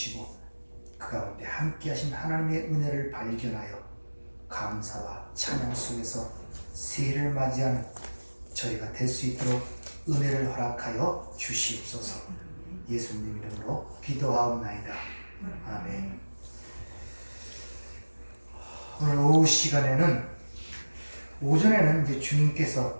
그 가운데 함께 하신 하나님의 은혜를 발견하여 감사와 찬양 속에서 새해를 맞이하는 저희가 될 수 있도록 은혜를 허락하여 주시옵소서. 예수님 이름으로 기도하옵나이다. 아멘. 오늘 오후 시간에는, 오전에는 이제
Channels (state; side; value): inverted; both; correlation -1.00